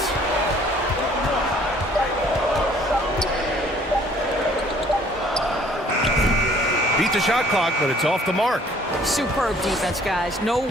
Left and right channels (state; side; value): normal; both; correlation 0.57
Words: Beat the shot clock, but it's off the mark. Superb defense, guys. No